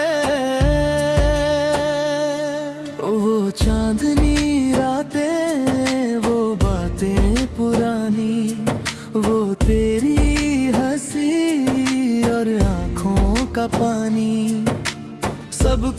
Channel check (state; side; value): identical; both; correlation 1.00